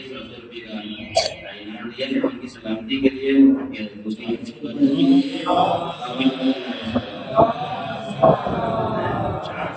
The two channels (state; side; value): identical; both; correlation 1.00